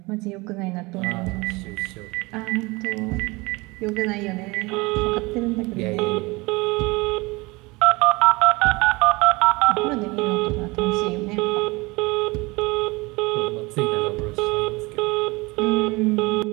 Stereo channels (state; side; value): quieter; left; 24.1 dB